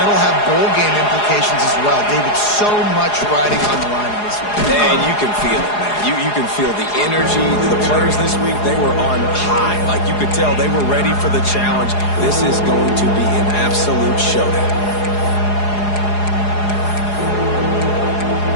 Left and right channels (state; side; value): late; right; 4.8 ms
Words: have bowl game implications as well. David, so much riding on the line in this one. And you can feel it, man. You can feel the energy. The players this week, they were on high. Like, you could tell they were ready for the challenge. This is going to be an absolute showdown.